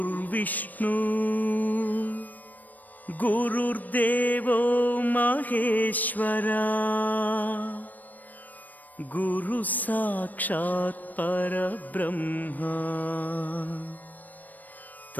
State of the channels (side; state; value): right; late; 0.084 ms